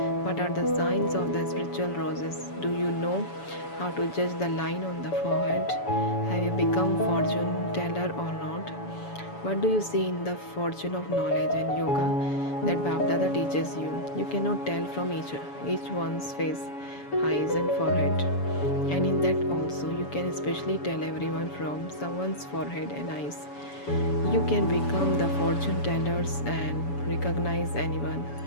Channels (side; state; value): right; late; 7.0 ms